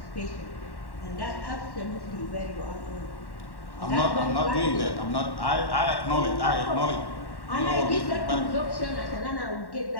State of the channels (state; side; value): late; right; 1.1 ms